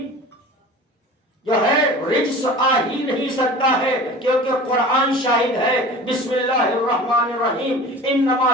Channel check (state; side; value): normal; both; correlation 0.39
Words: جو ہے رجس آ ہی نہیں سکتا ہے، کیونکہ قرآن شاہد ہے۔ بسم اللہ الرحمن الرحیم،